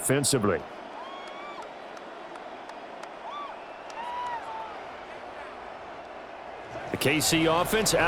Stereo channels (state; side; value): identical; both; correlation 1.00